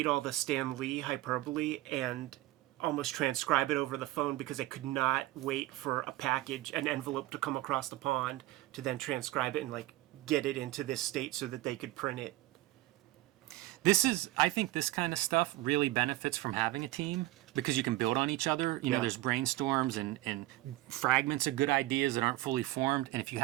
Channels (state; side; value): quieter; left; 17.1 dB